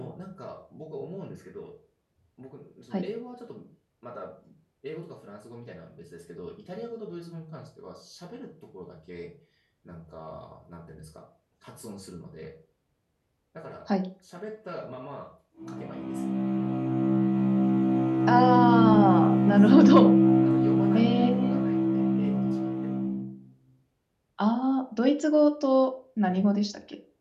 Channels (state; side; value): identical; both; correlation 1.00